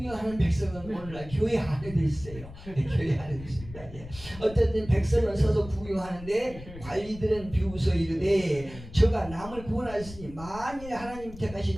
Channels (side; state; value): left; noise; rumble, 15 dB below the sound